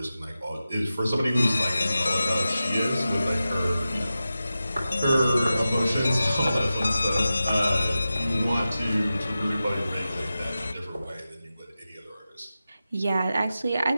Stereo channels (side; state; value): both; inverted; correlation -0.93